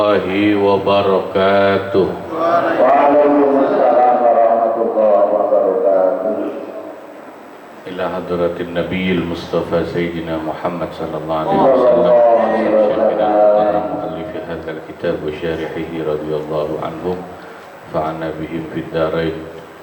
wabarakatuh. Waalaikumsalam warahmatullahi wabarakatuh. Ila hadratin Nabiyil Mustafa Sayyidina Muhammad sallallahu alaihi wasallam, Syekhina al-Mukarram muallif hadzal kitab wa syarihihi radhiyallahu anhum fa'ana bihim fid darain.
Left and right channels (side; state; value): both; identical; correlation 1.00